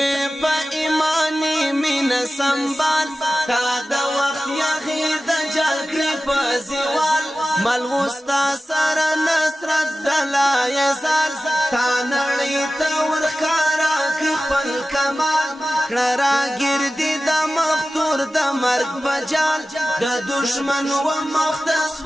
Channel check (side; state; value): both; normal; correlation 0.95